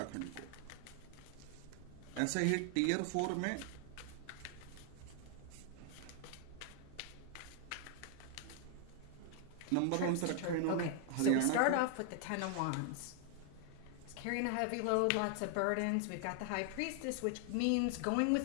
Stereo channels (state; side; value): different; both; correlation 0.00